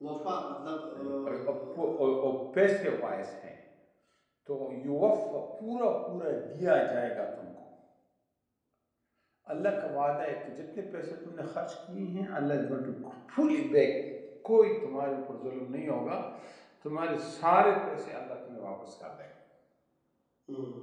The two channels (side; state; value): both; identical; correlation 1.00